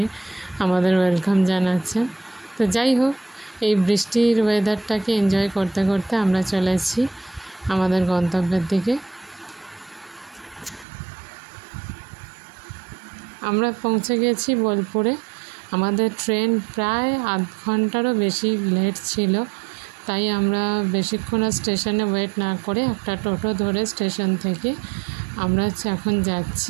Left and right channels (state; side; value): drops out; left; at 10.9 s